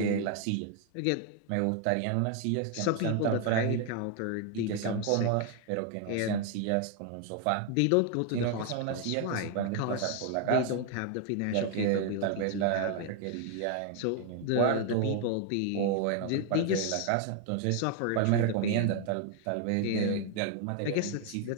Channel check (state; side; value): different; both; correlation 0.01